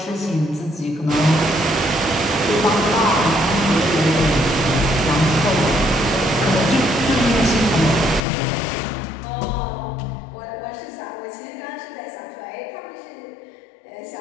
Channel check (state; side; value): drops out; right; at 8.2 s